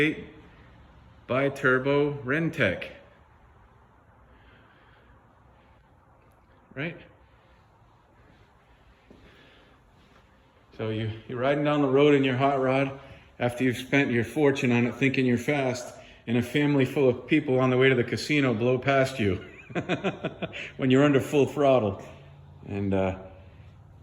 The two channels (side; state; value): both; identical; correlation 1.00